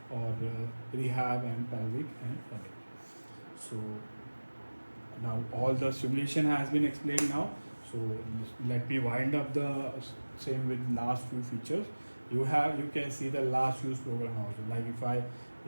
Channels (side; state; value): both; inverted; correlation -1.00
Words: or rehab and pelvic and other. So now all the simulation has been explained now. So let me wind up the same with last few features. You can see the last use program also. Like if I